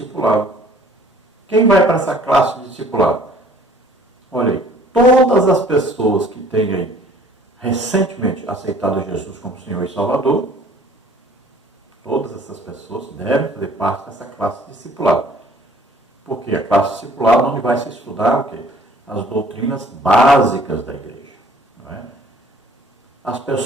Quem vai para essa classe de discipulado? Olha aí, todas as pessoas que têm aí recentemente aceitado Jesus como Senhor e Salvador, todas essas pessoas devem fazer parte dessa classe de discipulado. Porque a classe de discipulado onde vai se estudar o quê? As doutrinas básicas da igreja. Não é? As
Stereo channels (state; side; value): normal; both; correlation 0.54